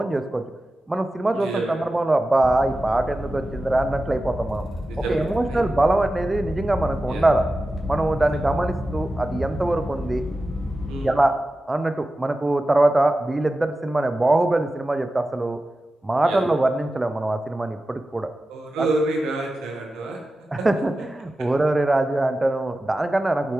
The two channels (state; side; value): normal; both; correlation 0.94